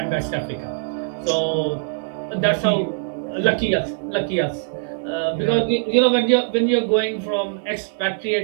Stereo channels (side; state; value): left; silent; digital silence